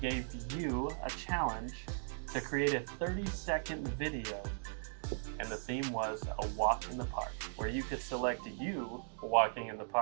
you a challenge to create a 30-second video, and the theme was a walk in the park, where you could select you walking in the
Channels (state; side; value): silent; left; digital silence